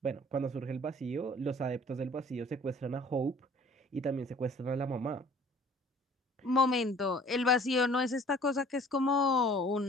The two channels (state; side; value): normal; both; correlation 0.51